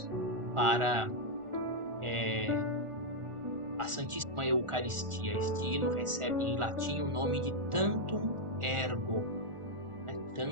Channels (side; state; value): left; late; 1.4 ms